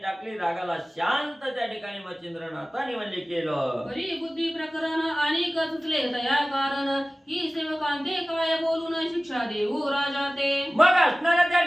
रागाला शांत त्या ठिकाणी मच्छिंद्रनाथांनी म्हणजे केलं. बरी बुद्धी प्रकरण आणि सुचले दया कारण ही सेवकांते काय बोलून शिक्षा देऊ राजा ते. मग असणाऱ्या त्या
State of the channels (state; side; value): normal; both; correlation 0.97